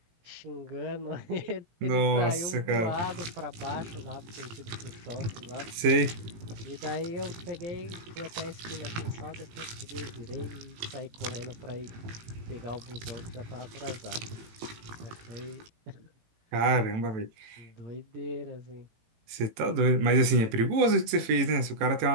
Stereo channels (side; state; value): left; late; 18 ms